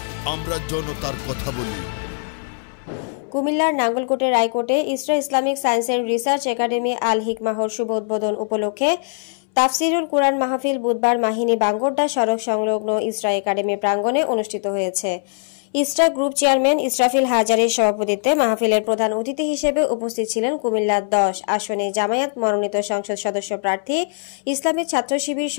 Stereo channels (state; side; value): silent; right; 65 dB below the other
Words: আমরা জনতার কথা বলি। কুমিল্লার নাঙ্গলকোটের রায়কোটে Isra Islamic science and research academy Al হিকমাহর শুভ উদ্বোধন উপলক্ষে তাফসিরুল কুরআন মাহফিল বুধবার মাহিনী বাঙ্গোরডা সড়ক সংলগ্ন ইসরা একাডেমি প্রাঙ্গণে অনুষ্ঠিত হয়েছে। ইসরা গ্রুপ চেয়ারম্যান ইসরাফিল হাজারীর সভাপতিত্বে মাহফিলের প্রধান অতিথি হিসেবে উপস্থিত ছিলেন কুমিল্লা 10 আসনে জামায়াত মনোনীত সংসদ সদস্য প্রার্থী ইসলামী ছাত্র শিবির